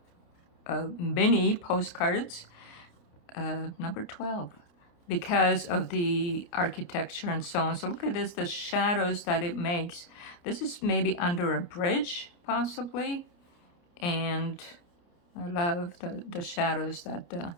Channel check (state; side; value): late; right; 29 ms